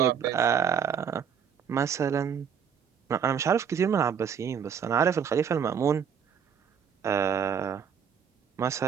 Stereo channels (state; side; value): quieter; left; 7.5 dB